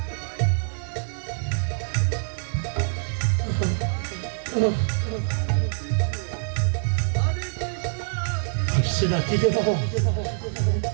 আসছে নাকি রে বাবা?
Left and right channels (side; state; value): left; silent; digital silence